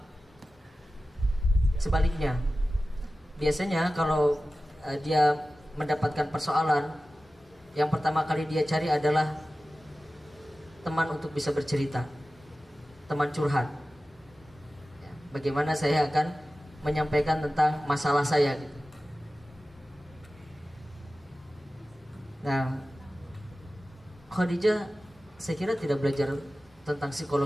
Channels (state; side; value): normal; both; correlation 0.95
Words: sebaliknya. Biasanya kalau dia mendapatkan persoalan, yang pertama kali dia cari adalah teman untuk bisa bercerita, teman curhat. Ya, bagaimana saya akan menyampaikan tentang masalah saya gitu. Nah, Khadijah saya kira tidak belajar tentang